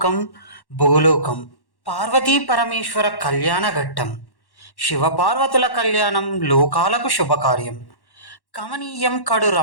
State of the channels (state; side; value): late; right; 1.1 ms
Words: భూలోకం. పార్వతీ పరమేశ్వర కళ్యాణ ఘట్టం. శివపార్వతుల కళ్యాణం లోకాలకు శుభకార్యం. కమనీయం కడు